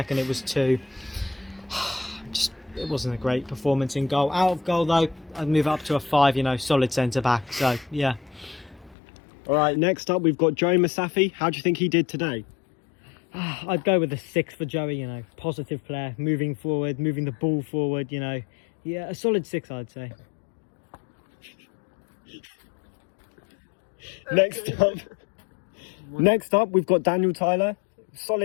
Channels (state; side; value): drops out; right; at 9.0 s